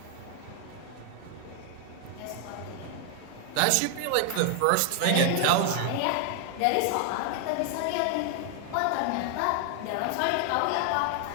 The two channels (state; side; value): different; both; correlation 0.00